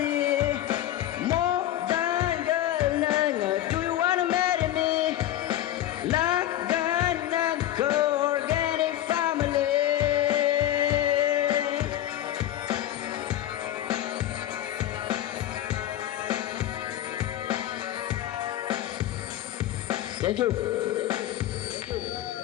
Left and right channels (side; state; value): right; quieter; 12.7 dB